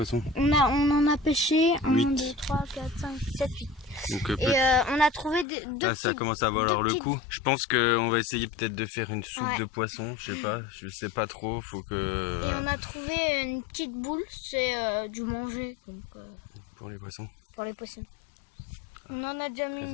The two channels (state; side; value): drops out; right; at 5.5 s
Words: On en a pêché 8. 1, 2, 3, 4, 5, 7, 8. Donc, et on a trouvé deux là, ça commence à valoir le coup. Je pense qu'on va essayer peut-être de faire une soupe de poisson. Je sais pas trop. Faut que. Et on a trouvé une petite boule, c'est du manger. Donc, pour les poissons. Pour les poissons. On en a déjà mis